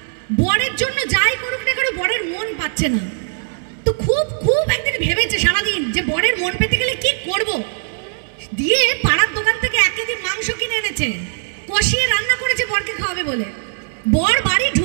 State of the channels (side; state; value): left; silent; 62 dB below the other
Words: বরের জন্য যাই করুক না করো বরের মন পাচ্ছে না। তো খুব খুব একদিন ভেবেছে সারাদিন যে বরের মন পেতে গেলে কি করব। দিয়ে পাড়ার দোকান থেকে 1 কেজি মাংস কিনে এনেছে, কষিয়ে রান্না করেছে বরকে খাওয়াবে বলে। বর বাড়ি